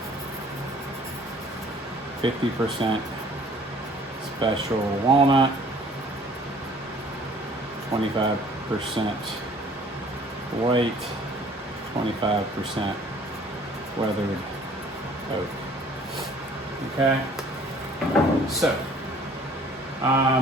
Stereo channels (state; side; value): normal; both; correlation 0.54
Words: 50% special walnut, 25% white, 25% weathered oak. Okay, so